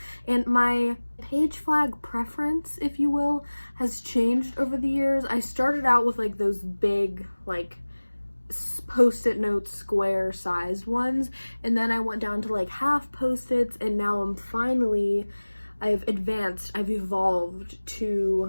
and my page flag preference, if you will, has changed over the years. I started out with like those big like post-it note square sized ones, and then I went down to like half post-its, and now I've evolved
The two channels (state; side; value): inverted; both; correlation -1.00